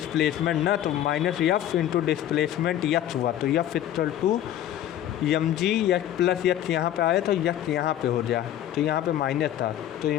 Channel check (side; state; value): right; quieter; 11.7 dB